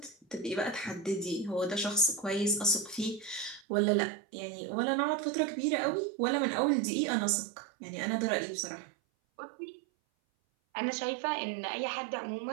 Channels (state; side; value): drops out; left; at 3.7 s